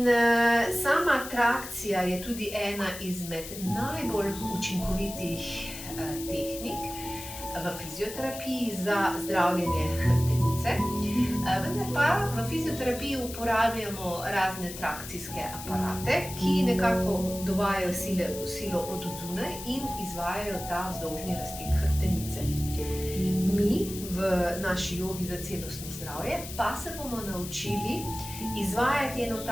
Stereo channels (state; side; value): noise; left; hiss, 11 dB below the sound